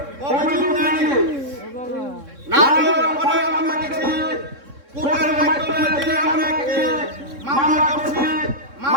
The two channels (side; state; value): left; late; 3.6 ms